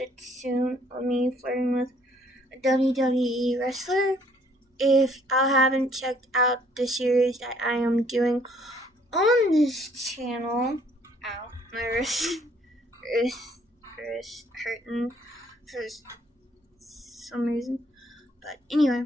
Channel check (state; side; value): normal; both; correlation 0.63